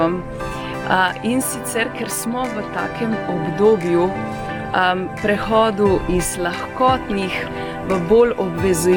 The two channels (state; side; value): identical; both; correlation 1.00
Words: in sicer, ker smo v takem obdobju prehodu iz lahkotnih v bolj